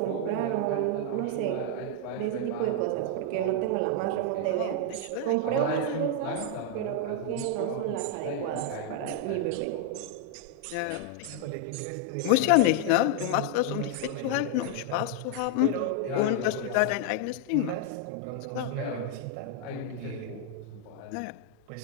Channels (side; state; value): both; different; correlation 0.00